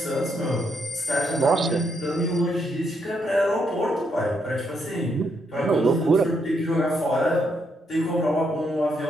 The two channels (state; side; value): normal; both; correlation 0.76